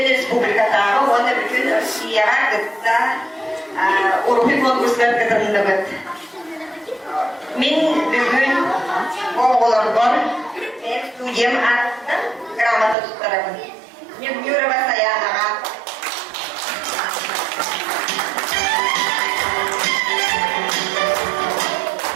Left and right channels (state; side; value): drops out; left; at 13.0 s